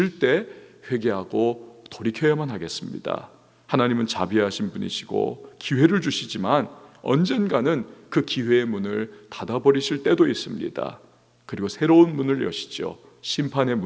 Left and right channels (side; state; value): both; identical; correlation 1.00